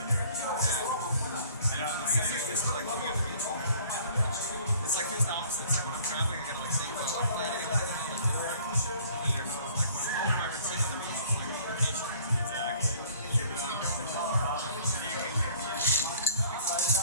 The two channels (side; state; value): both; inverted; correlation -0.53